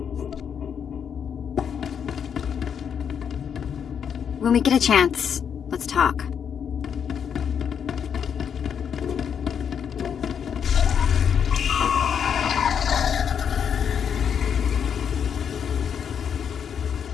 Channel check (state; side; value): quieter; right; 7.7 dB